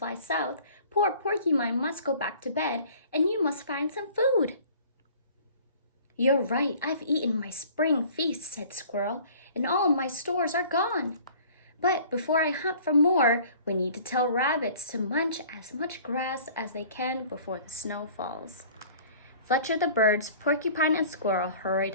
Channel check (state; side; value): inverted; both; correlation -0.49